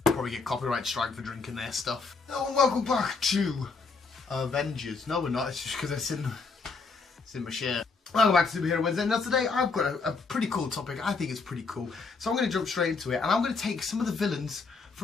Probably get copyright strike for drinking their stuff. Hello and welcome back to Avengers. No, we're not. It's just because it's in my shirt. Welcome back to Superhero Wednesday. Now today I've got a pretty cool topic. I think it's pretty cool. So I'm going to jump straight into it, and I'm going to take some of the villains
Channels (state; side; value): quieter; right; 4.4 dB